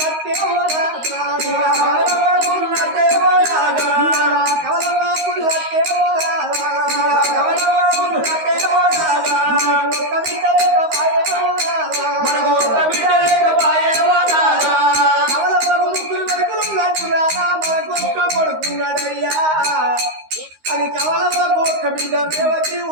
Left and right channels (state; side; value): late; left; 13 ms